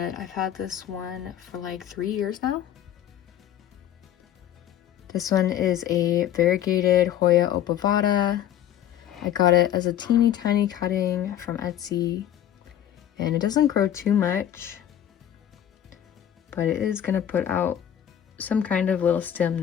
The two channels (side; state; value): right; quieter; 10.9 dB